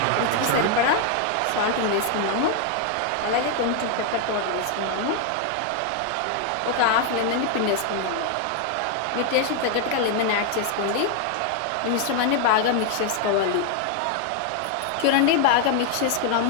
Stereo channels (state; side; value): different; both; correlation 0.00